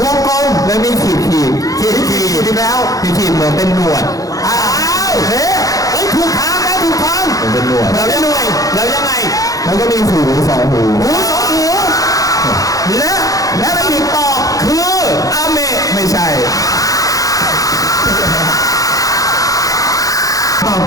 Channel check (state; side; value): late; right; 0.17 ms